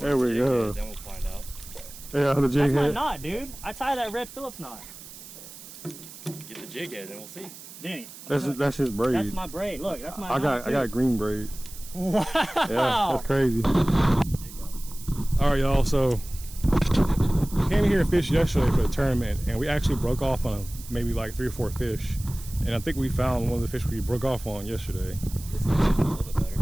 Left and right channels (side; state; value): right; noise; hiss, 16 dB below the sound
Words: we go. Then we'll find out. Yeah, the jig That's my head. knot, dude. I tie that red Phillips knot. Get the jig head and we'll see. Danny. That's his braid. That's my braid. Look, that's my I knot, got green braid. Wow. Yeah, that's crazy. Jig out. All right, y'all. So came here to fish yesterday for the tournament, and we actually broke off on maybe like 3 or 4 fish. And I think we found one of the fish we broke off on yesterday. This makes it a little bit